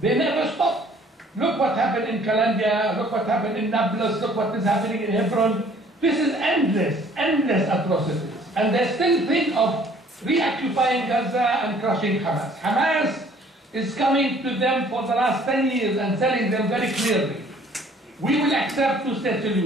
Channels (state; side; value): normal; both; correlation 0.57